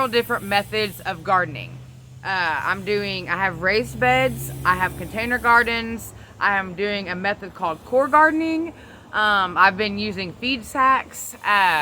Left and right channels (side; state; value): both; identical; correlation 1.00